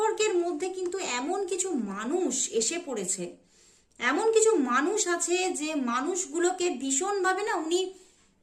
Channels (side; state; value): both; identical; correlation 1.00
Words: মধ্যে কিন্তু এমন কিছু মানুষ এসে পড়েছে, এমন কিছু মানুষ আছে যে মানুষগুলোকে ভীষণভাবে না উনি